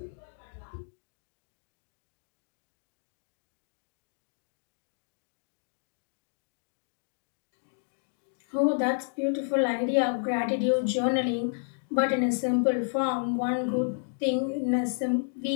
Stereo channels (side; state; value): right; silent; digital silence